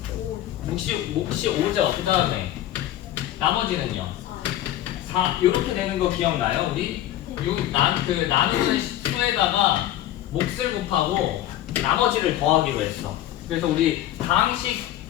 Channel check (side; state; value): right; quieter; 13.2 dB